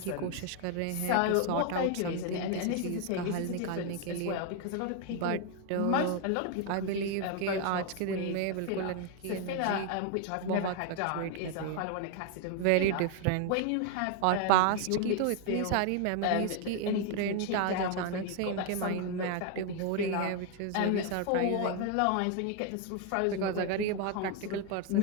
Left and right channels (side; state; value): both; different; correlation 0.00